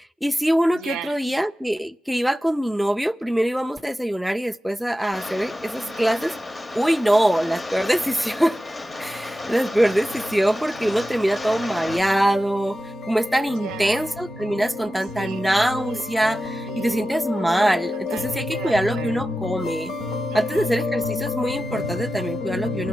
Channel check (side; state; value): both; normal; correlation 0.93